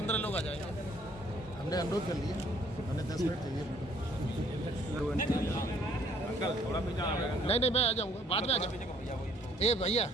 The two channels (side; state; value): both; normal; correlation 0.61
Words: लोग आ जाएंगे। हमने अनुरोध कर लिया, हमें 10 मिनट चाहिए। नहीं, मैं आ जाऊँगा, बाद में आ जाऊँगा। ए भैया,